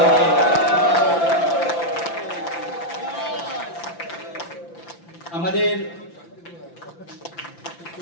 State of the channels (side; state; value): right; late; 5.9 ms